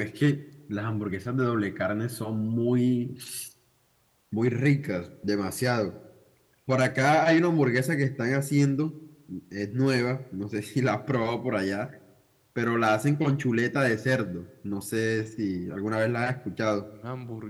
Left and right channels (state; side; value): identical; both; correlation 1.00